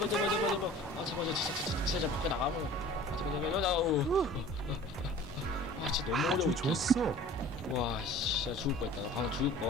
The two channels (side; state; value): both; normal; correlation 0.45